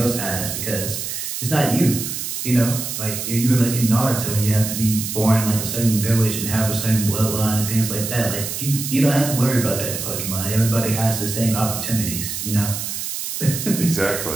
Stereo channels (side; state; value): right; noise; hiss, 5 dB below the sound